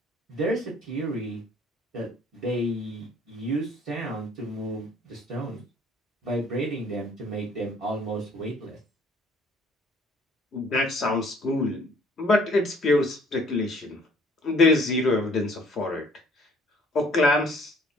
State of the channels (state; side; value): normal; both; correlation 0.58